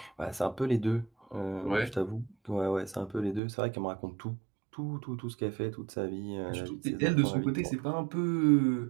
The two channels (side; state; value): left; drops out; at 3.4 s